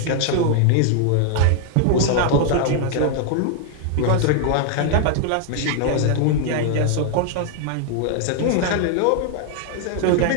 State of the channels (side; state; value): both; different; correlation 0.00